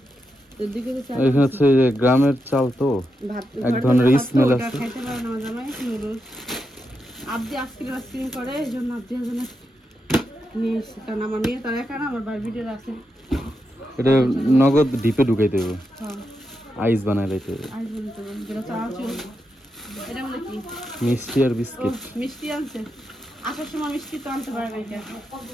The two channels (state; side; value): normal; both; correlation 0.86